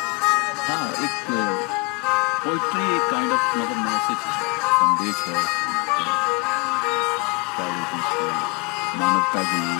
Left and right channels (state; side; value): quieter; right; 27.7 dB